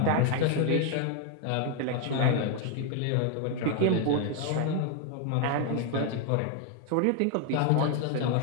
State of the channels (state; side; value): different; both; correlation 0.01